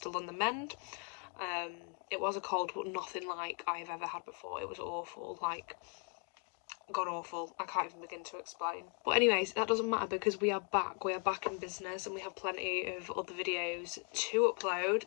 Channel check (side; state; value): right; quieter; 39.9 dB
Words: on the mend. It was a cold, but nothing like I've ever had before. It was awful, like god awful. I can't even begin to explain. But anyways, that doesn't matter because we are back in business, and we have plenty of other videos to upload,